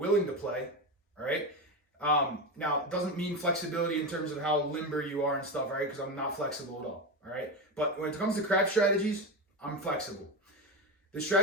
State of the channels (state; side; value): normal; both; correlation 0.17